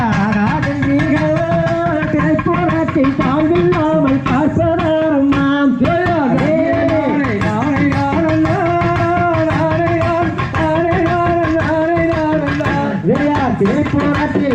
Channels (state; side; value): identical; both; correlation 1.00